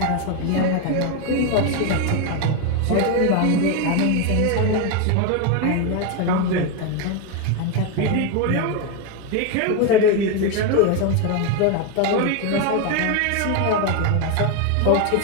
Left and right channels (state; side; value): different; both; correlation 0.02